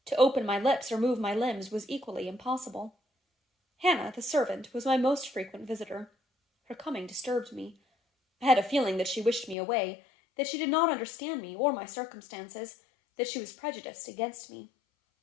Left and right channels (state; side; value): drops out; right; at 9.6 s